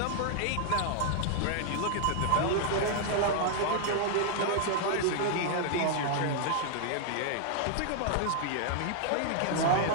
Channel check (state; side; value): different; both; correlation 0.00